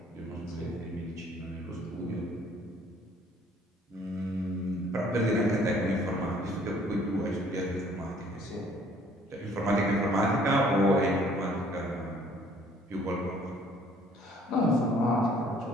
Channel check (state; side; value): normal; both; correlation 0.58